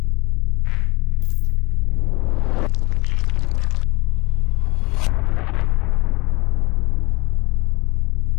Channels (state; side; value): quieter; right; 24.0 dB